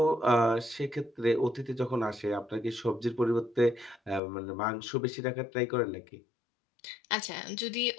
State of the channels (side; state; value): right; drops out; at 4.2 s